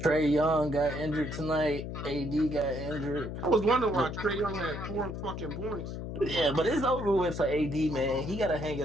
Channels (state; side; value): noise; left; hum, 6 dB below the sound